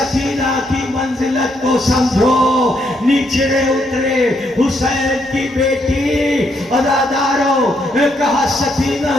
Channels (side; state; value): both; normal; correlation 0.75